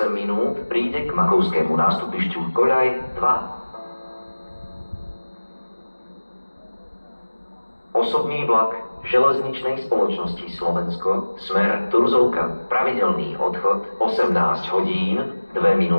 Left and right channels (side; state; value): both; inverted; correlation -1.00